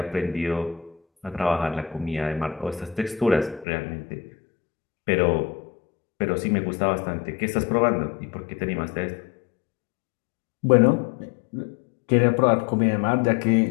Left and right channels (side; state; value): right; drops out; at 3.7 s